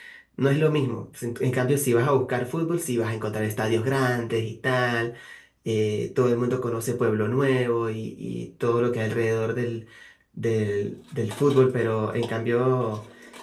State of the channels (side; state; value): both; identical; correlation 1.00